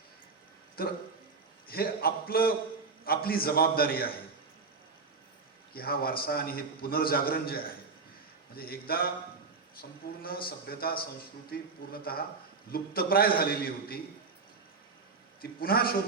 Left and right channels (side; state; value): left; quieter; 4.6 dB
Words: तर हे आपली जबाबदारी आहे की हा वारसा आणि हे पुनर्जागरण जे आहे, म्हणजे एकदा संपूर्ण सभ्यता संस्कृती पूर्णतः लुप्तप्राय झालेली होती, ती पुन्हा